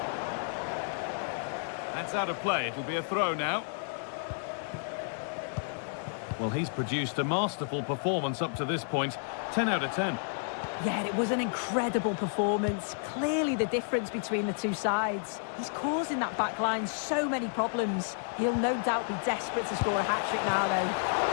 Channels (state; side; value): silent; right; digital silence